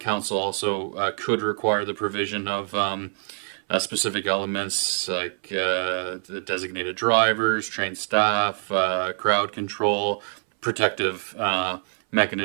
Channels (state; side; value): silent; left; 62 dB below the other